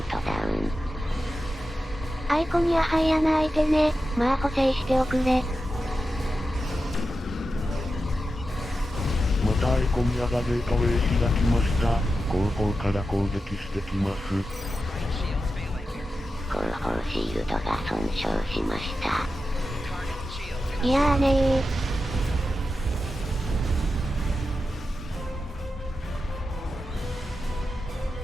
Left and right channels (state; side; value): normal; both; correlation 0.91